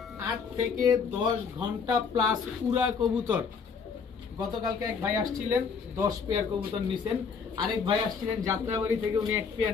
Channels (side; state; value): right; quieter; 5.8 dB